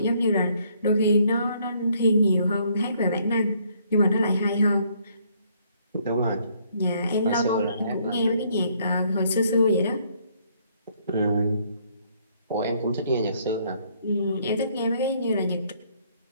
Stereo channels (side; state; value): both; inverted; correlation -0.67